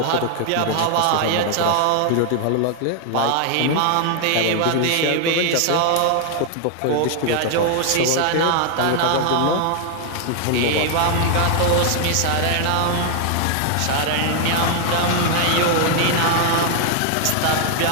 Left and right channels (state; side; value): different; both; correlation 0.00